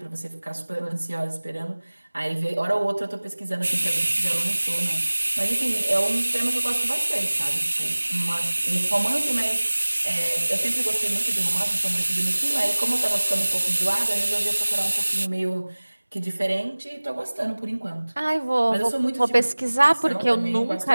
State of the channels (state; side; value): inverted; both; correlation -1.00